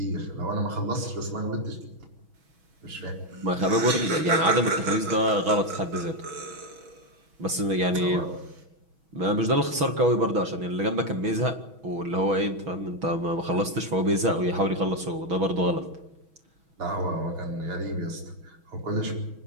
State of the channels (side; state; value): left; late; 6.2 ms